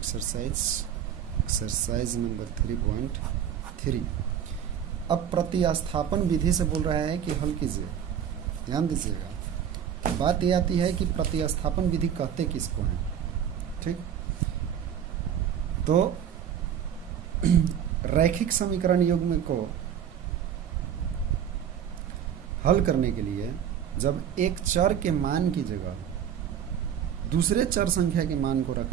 नंबर 3.3। अब प्रतिस्थापन विधि से बोल रहा है कि हल कीजिए। ध्यान दीजिएगा, बात ये आती है कि प्रतिस्थापन विधि कहते किसको हैं। ठीक, तो रैखिक समीकरण युग्म को हल करने के लिए जब एक चर के मान की जगह दूसरे चर संख्या के मान को रख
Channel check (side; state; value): left; quieter; 9.1 dB